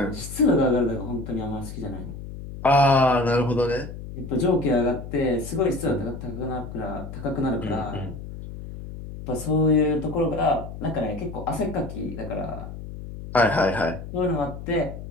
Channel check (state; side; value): noise; left; hum, 10 dB below the sound